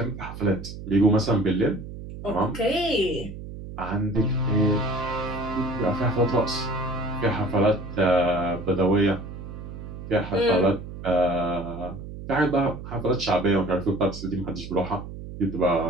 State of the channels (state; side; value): noise; right; hum, 11 dB below the sound